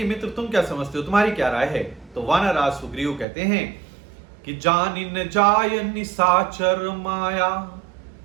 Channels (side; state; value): left; drops out; at 3.2 s